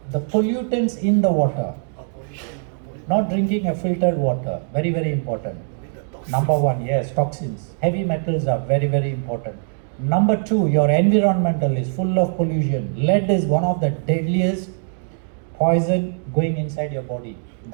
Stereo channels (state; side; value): silent; left; 62 dB below the other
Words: the pollutants in the water. pollution. Not drinking a filtered water, very, very important. With the toxins. Number one, yes, toxins. Heavy metals are very, very important. Number two, your environmental is full of pollution. Lead is one of the deadliest poison going inside your body.